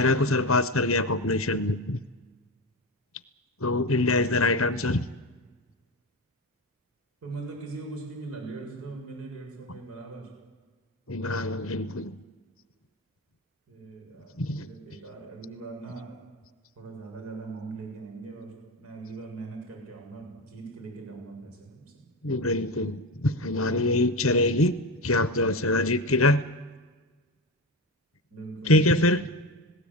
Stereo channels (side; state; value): both; normal; correlation 0.20